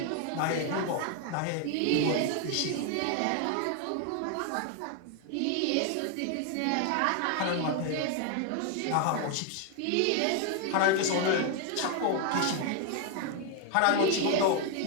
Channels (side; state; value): both; different; correlation 0.01